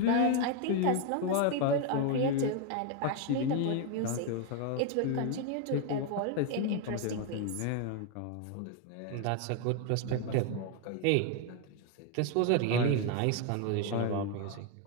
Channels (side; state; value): both; different; correlation 0.01